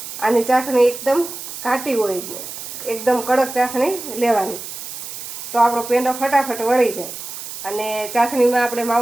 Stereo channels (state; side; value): noise; right; hiss, 10 dB below the sound